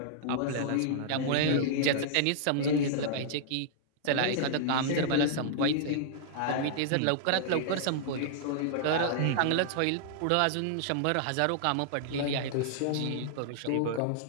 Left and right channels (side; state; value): both; different; correlation -0.01